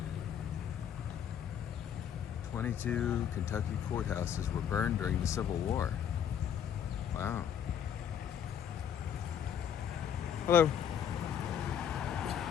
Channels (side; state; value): right; quieter; 8.8 dB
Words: 22 Kentucky courthouses were burned during the Civil War. Wow. Hello.